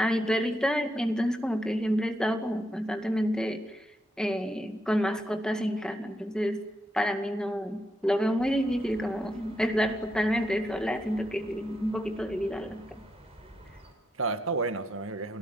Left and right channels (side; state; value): both; normal; correlation 0.82